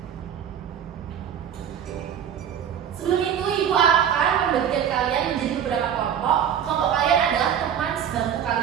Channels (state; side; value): quieter; left; 8.8 dB